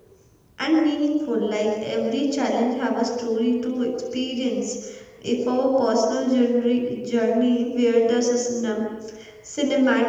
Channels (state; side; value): identical; both; correlation 1.00